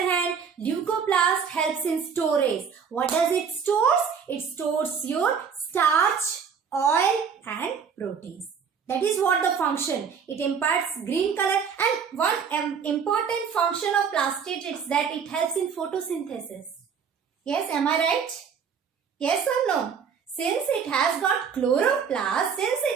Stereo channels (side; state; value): left; quieter; 6.7 dB